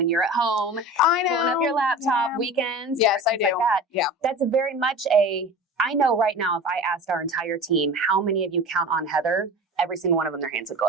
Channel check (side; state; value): both; normal; correlation 0.35